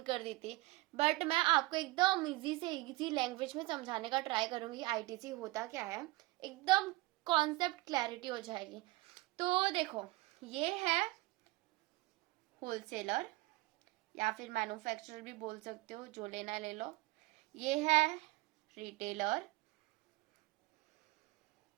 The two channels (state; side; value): quieter; left; 21.1 dB